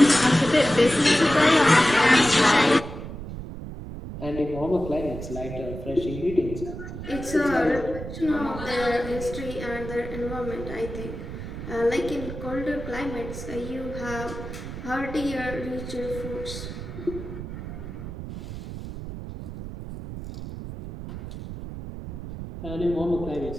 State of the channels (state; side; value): noise; right; rumble, 9 dB below the sound